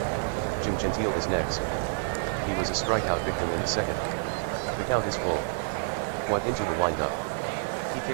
Jim Gentile is next. He was a strikeout victim in the second. The count is full. White into the windup. He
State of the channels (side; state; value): left; silent; digital silence